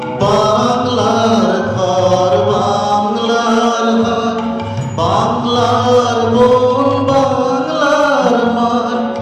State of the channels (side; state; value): both; identical; correlation 1.00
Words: বাংলার ঘর, বাংলার হাট, বাংলার বন, বাংলার মাঠ,